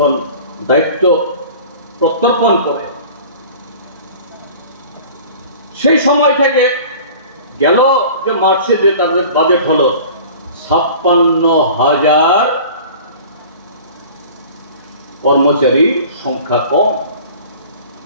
দায়িত্ব প্রত্যর্পণ করে, সেই সময় থেকে গেল যে মার্চে যে তাদের বাজেট হলো 56,000 কর্মচারী সংখ্যা কম।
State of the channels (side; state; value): both; inverted; correlation -0.42